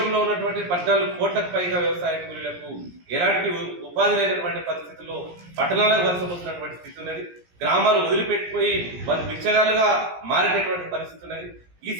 ఉన్నటువంటి 14 కోట్లకు పైగా వ్యవసాయ కూలీలకు ఎలాంటి ఉపాధి లేనటువంటి పరిస్థితుల్లో పట్టణాలకు వలసపోతున్నటువంటి స్థితి ఉన్నది. గ్రామాలు వదిలిపెట్టిపోయి వాళ్ళు బిచ్చగాలుగా మారేటటువంటి పరిస్థితి ఉన్నది. ఈ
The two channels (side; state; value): left; late; 17 ms